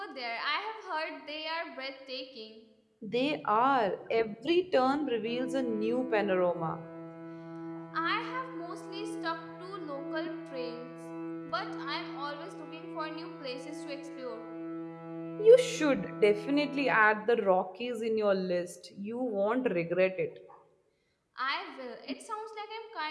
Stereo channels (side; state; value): both; identical; correlation 1.00